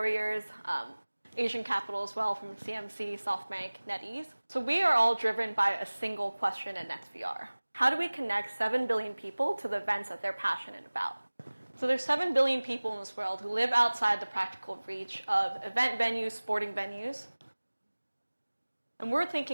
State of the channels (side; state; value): both; inverted; correlation -1.00